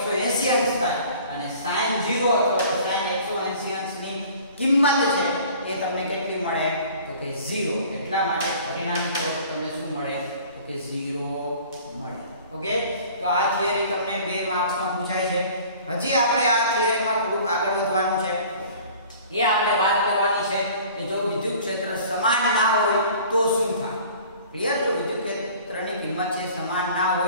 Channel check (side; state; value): both; inverted; correlation -0.48